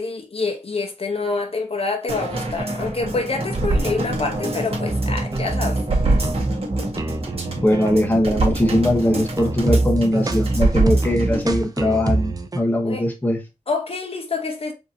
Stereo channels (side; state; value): both; normal; correlation 0.82